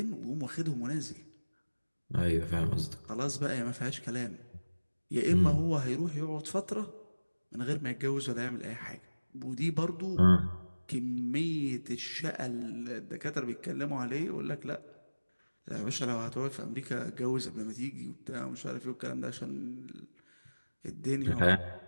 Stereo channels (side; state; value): both; inverted; correlation -1.00